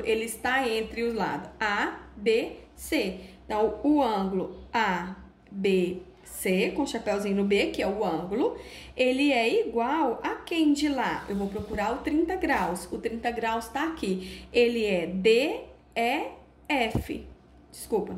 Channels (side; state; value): both; identical; correlation 1.00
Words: ele está entre os lados A, B, C. Então, o ângulo A, B, C, com chapéuzinho no B, que é o ângulo, ele é igual a quem de lá? Eu vou procurar o 30 graus. O 30 graus tá aqui. Ele é DEF. Desculpa.